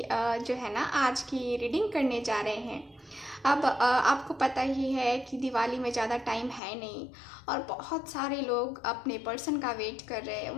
जो है ना आज की रीडिंग करने जा रहे हैं। अब आपको पता ही है कि दिवाली में ज़्यादा टाइम है नहीं और बहुत सारे लोग अपने पर्सन का वेट कर रहे हैं,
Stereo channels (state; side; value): drops out; right; at 6.6 s